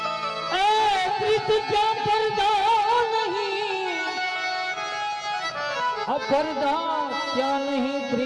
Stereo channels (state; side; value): identical; both; correlation 1.00